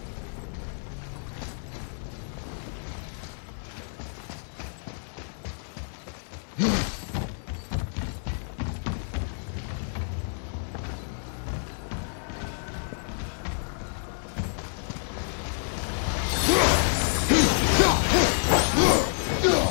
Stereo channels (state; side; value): silent; right; digital silence